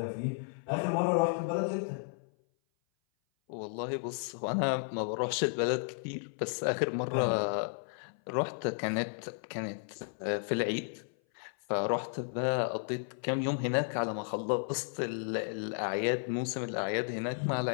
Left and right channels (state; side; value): silent; right; 55 dB below the other